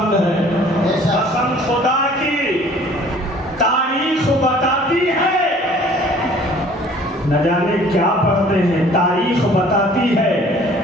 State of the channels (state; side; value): normal; both; correlation 0.53